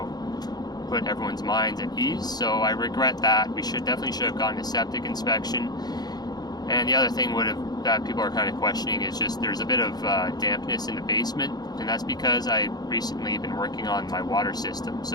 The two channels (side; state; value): right; late; 0.19 ms